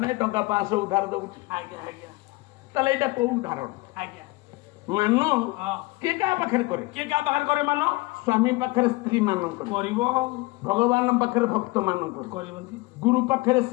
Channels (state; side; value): quieter; right; 22.7 dB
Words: ନାହିଁ ଟଙ୍କା 500 ଉଧାର ଦଉଛି ଆଜ୍ଞା ଆଜ୍ଞା ତାହେଲେ ଏଇଟା କୋଉ ଉଦାହରଣ ଆଜ୍ଞା ମାନ ହଁ କିଏ କାହା ପାଖରେ କରେ କିଏ କାହା ପାଖରେ କରେ ମାନ ସ୍ୱାମୀ ପାଖରେ ସ୍ତ୍ରୀ ମାନଙ୍କ କରିବ ଭଗବାନ ପାଖରେ ଭକ୍ତ ମାନଙ୍କ କରିବନ୍ତି ଗୁରୁ ପାଖରେ